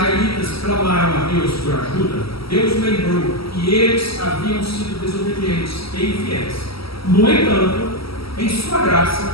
clamaram a Deus por ajuda, Deus lembrou que eles haviam sido desobedientes e infiéis. No entanto, em sua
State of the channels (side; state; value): right; late; 0.75 ms